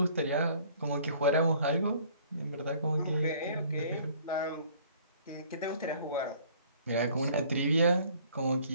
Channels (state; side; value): inverted; both; correlation -0.56